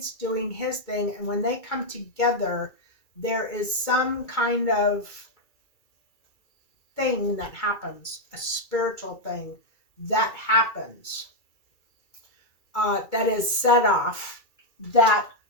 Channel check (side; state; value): right; late; 2.3 ms